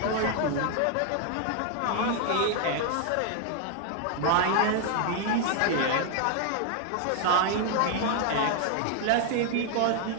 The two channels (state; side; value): different; both; correlation 0.00